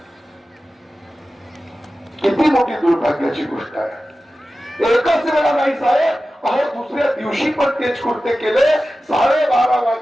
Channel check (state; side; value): normal; both; correlation 0.94